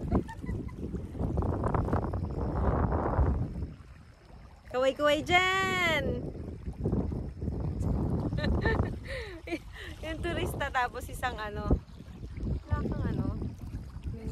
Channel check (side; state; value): both; identical; correlation 1.00